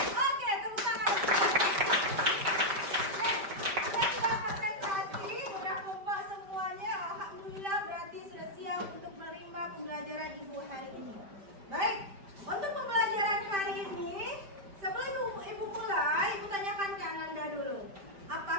Oke, tepuk tangan. Kita sudah konsentrasi, sudah kompak semuanya. Alhamdulillah, berarti sudah siap untuk menerima pembelajaran Ibu hari ini. Baik, untuk pembelajaran hari ini, sebelum Ibu mulai, Ibu tanyakan ke Ananda dulu.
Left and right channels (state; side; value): late; left; 5.1 ms